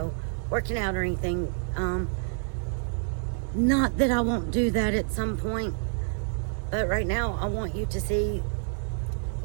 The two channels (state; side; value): silent; left; digital silence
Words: working out or anything. Not that I won't do that at some point, but right now I want you to see